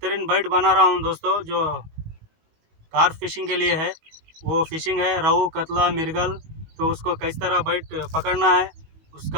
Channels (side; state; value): left; late; 19 ms